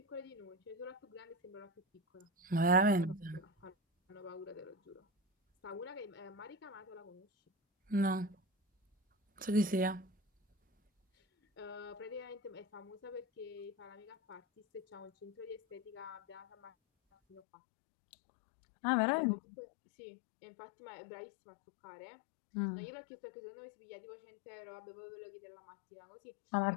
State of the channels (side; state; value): right; drops out; at 17.4 s